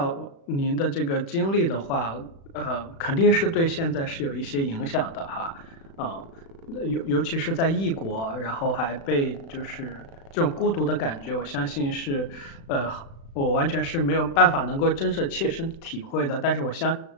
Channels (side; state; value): right; late; 36 ms